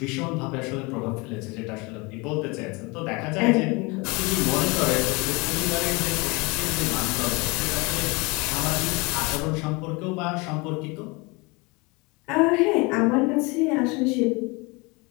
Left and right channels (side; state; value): right; quieter; 26.7 dB